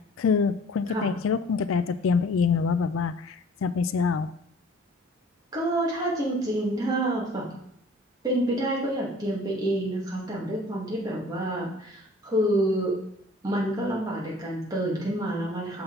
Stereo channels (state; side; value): normal; both; correlation 0.51